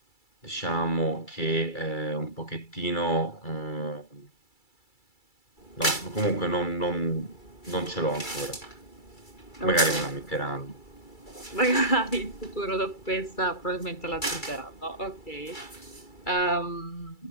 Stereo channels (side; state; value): right; late; 2.3 ms